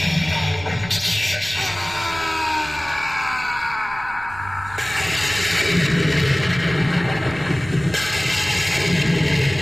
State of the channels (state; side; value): noise; right; rumble, 17 dB below the sound